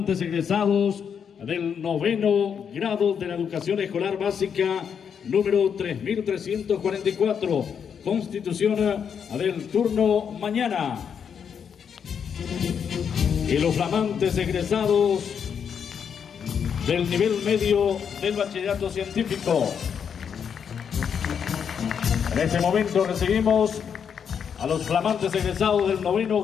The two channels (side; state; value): right; quieter; 7.4 dB